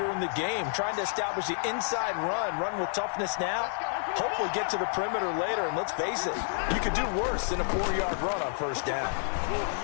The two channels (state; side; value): silent; right; digital silence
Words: in the game, trying to establish the inside run with toughness now, hopefully get to the perimeter later, and let's face it, you could do worse than a 4-yard run on first down.